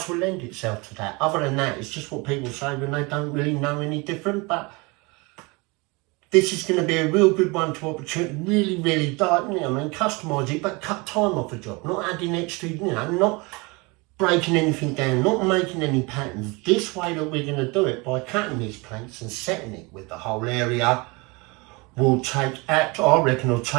will lend itself to that. Other than that, it's just what people say when they don't really know any different. But this is going to be a real good one to opportunity, really, customise it, but cut time off a job, not adding extra, you know, not breaking anything down, not making any patterns. This way that we're going to do it, by cutting these planks and setting it with the whole area, will take, I reckon it'll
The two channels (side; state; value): left; quieter; 26.8 dB